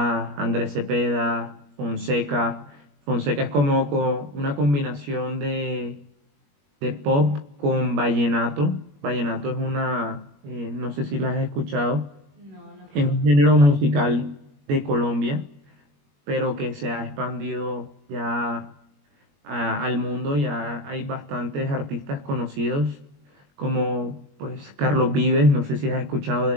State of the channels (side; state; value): left; late; 21 ms